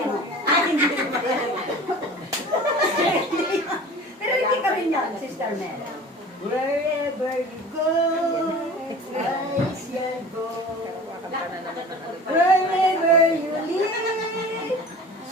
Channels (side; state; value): both; normal; correlation 0.40